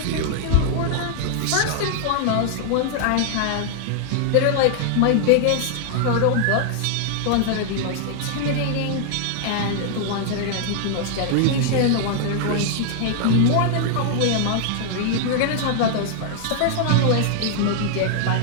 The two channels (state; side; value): different; both; correlation -0.01